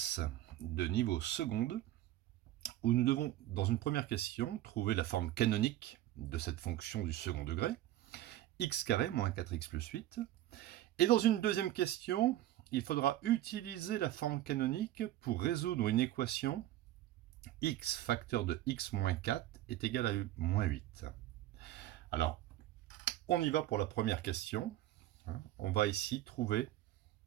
de niveau seconde où nous devons, dans une première question, trouver la forme canonique de cette fonction du second degré, x carré moins 4x plus 8. Et dans une deuxième question, il faudra utiliser la forme canonique pour résoudre une équation x facteur de x moins 4 est égal à moins 8. Alors, on y va pour la première question. On va ici trouver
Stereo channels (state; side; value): quieter; left; 14.2 dB